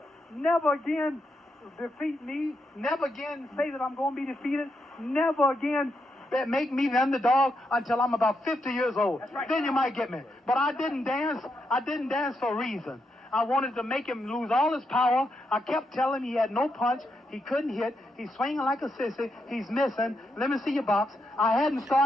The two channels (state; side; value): normal; both; correlation 0.82